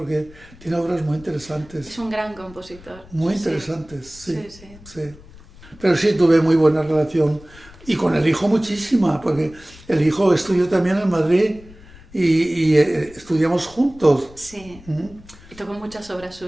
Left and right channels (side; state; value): left; noise; rumble, 21 dB below the sound